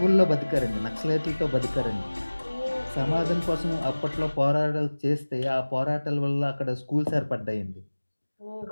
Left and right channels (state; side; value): inverted; both; correlation -1.00